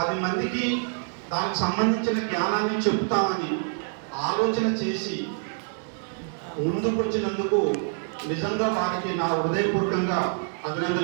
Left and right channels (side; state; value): left; silent; 61 dB below the other